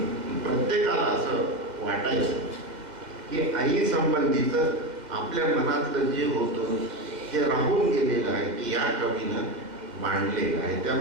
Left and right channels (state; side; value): late; left; 2.0 ms